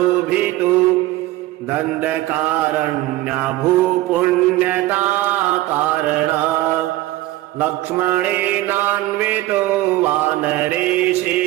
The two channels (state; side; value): quieter; left; 16.8 dB